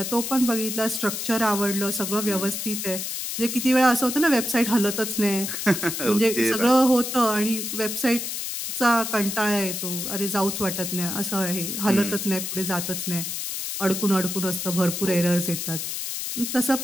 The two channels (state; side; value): noise; left; hiss, 4 dB below the sound